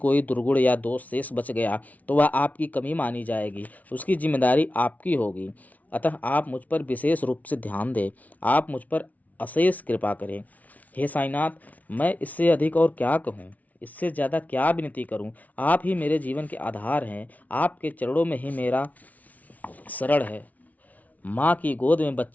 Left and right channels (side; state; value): right; late; 0.073 ms